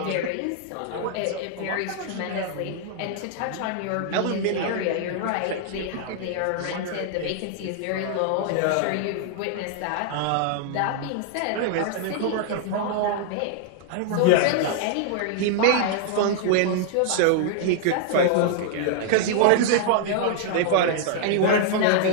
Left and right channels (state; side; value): different; both; correlation 0.00